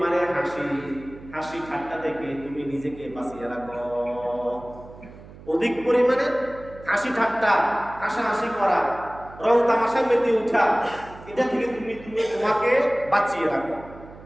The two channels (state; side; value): noise; right; hum, 18 dB below the sound